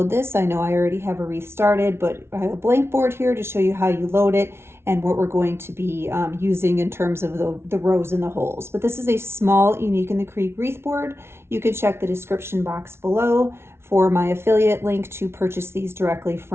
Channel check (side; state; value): left; late; 0.12 ms